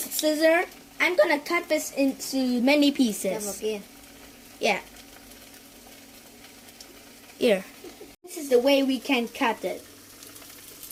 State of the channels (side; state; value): both; identical; correlation 1.00